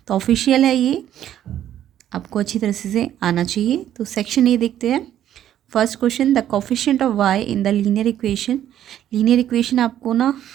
तो ऑफिशियल है ये, आपको अच्छी तरह से आना चाहिए। तो सेक्शन ए देखते हैं। First question, the coefficient of y in the linear equation. Linear equation आपको ना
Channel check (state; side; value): quieter; left; 11.2 dB